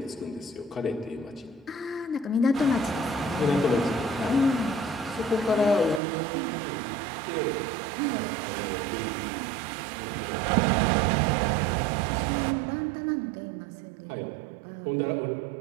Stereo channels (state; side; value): drops out; left; at 6.0 s